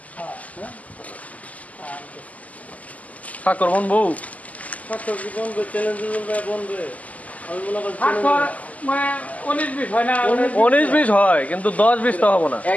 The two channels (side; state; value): right; late; 0.074 ms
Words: হ্যাঁ হ্যাঁ ঠাকুর মন বউ স্বাস্থ্য কি বন্ধু চ্যালেঞ্জ বন্ধু আমি মনে করি ঠাকুর মানে 19-20 হয় না 19-20 হয় কিন্তু 10-20 তো হবে না